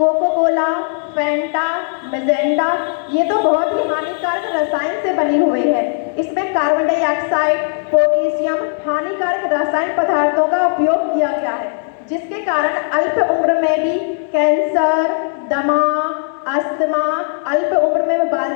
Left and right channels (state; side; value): silent; right; 65 dB below the other